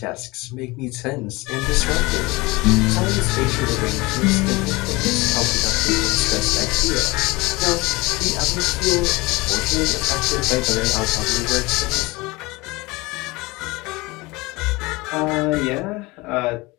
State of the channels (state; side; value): quieter; right; 23.1 dB